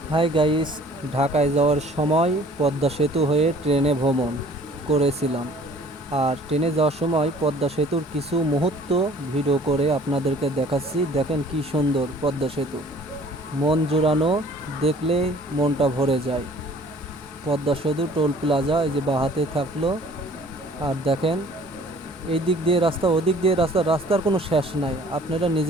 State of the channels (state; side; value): normal; both; correlation 0.52